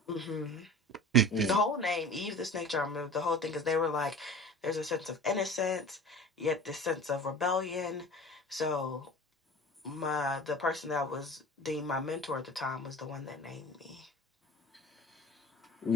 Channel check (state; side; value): normal; both; correlation 0.39